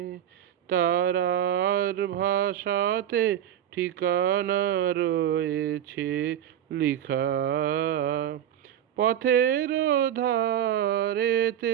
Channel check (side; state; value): left; quieter; 10.7 dB